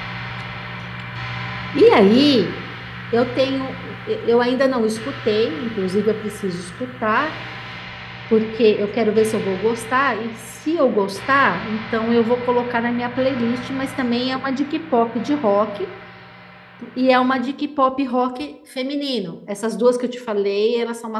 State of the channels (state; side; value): identical; both; correlation 1.00